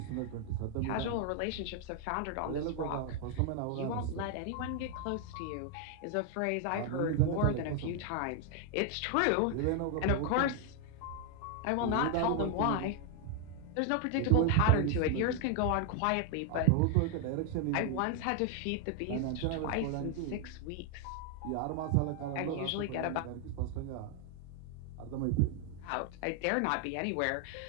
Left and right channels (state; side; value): different; both; correlation 0.00